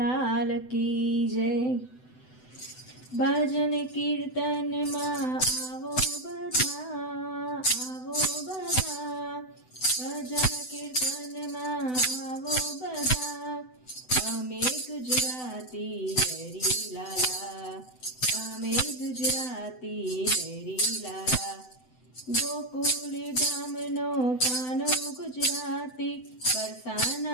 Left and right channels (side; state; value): right; late; 7.9 ms